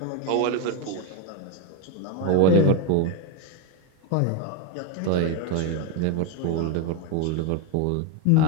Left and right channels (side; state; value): both; different; correlation 0.02